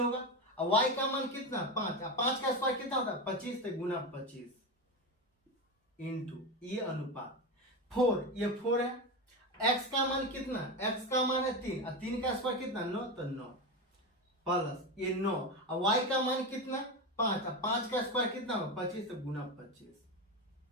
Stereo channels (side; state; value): both; normal; correlation 0.17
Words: और y का मान कितना 5 और 5 का स्क्वायर कितना होता है 25 तो गुना 25 इंटू ये अनुपात 4, ये 4 है। x का मान कितना, x का मान है 3 और 3 का स्क्वायर कितना 9 तो 9 प्लस ये 9 और y का मान कितना 5 और 5 का स्क्वायर कितना हो 25 तो गुना